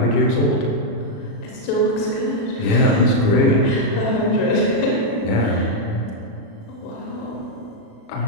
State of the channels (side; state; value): right; late; 36 ms